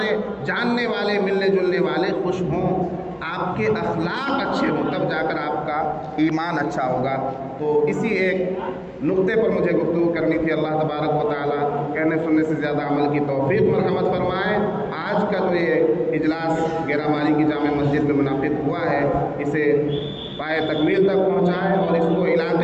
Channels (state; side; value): identical; both; correlation 1.00